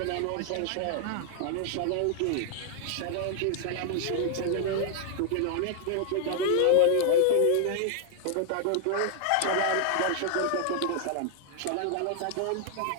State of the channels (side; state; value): both; different; correlation 0.00